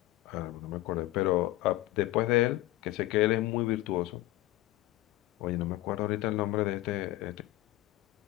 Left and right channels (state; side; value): quieter; right; 17.1 dB